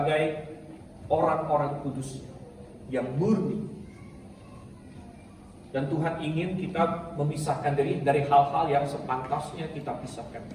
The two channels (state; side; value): identical; both; correlation 1.00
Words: orang-orang kudus yang murni. Dan Tuhan ingin kita memisahkan diri dari hal-hal yang sepantasnya kita pisahkan.